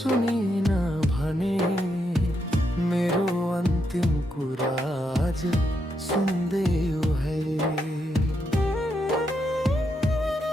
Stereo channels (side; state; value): both; normal; correlation 0.80